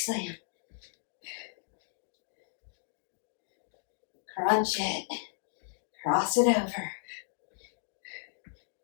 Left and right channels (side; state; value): right; silent; digital silence